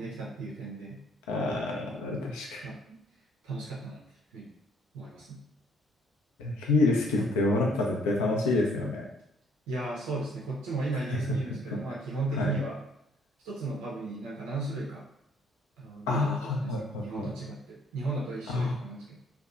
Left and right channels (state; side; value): normal; both; correlation 0.63